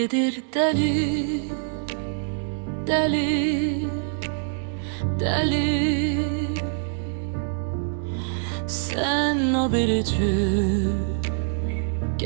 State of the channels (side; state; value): left; silent; digital silence